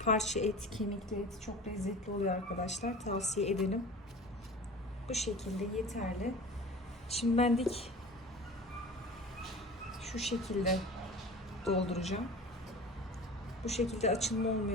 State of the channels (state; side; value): normal; both; correlation 0.38